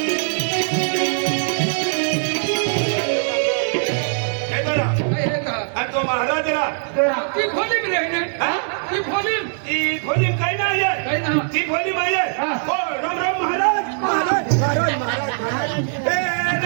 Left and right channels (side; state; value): left; silent; digital silence